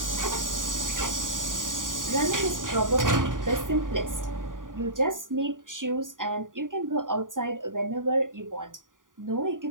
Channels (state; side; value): late; left; 0.89 ms